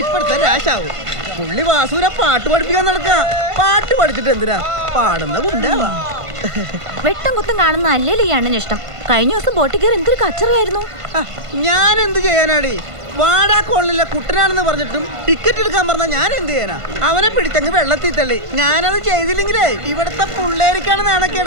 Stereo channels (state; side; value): late; left; 1.5 ms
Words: ഇപ്പോഴത്തെ രാശാവും. പുള്ളി വാസുവിനെ പാട്ട് പഠിപ്പിക്കാൻ നടക്ക. പാട്ട് പഠിച്ചിട്ട് എന്തിനാ? പാടുന്ന ഗുണ്ടാവാ. വെട്ടം കുത്തും കാണുന്ന അല്ലേലും ഈ അണ്ണന് ഇഷ്ടം. കഴിഞ്ഞ ദിവസം ബോട്ടിൽ കയറി എന്തൊരു കച്ചറയായിരുന്നു. ഞാൻ എന്ത് ചെയ്യാനാടി? വാടാ കോളനിലെ കുട്ടനാണെന്ന് പറഞ്ഞിട്ടും ടിക്കറ്റ് എടുക്കാൻ പറഞ്ഞാ ഞാൻ എന്ത് ചെയ്യാനാ? അവനെ പിടിച്ചങ്ങ് വെള്ളത്തിൽ തള്ളി. ഞാനത് ചെയ്തില്ലെങ്കിലേ ഇവിടത്തെ പിള്ളേർക്കാണ്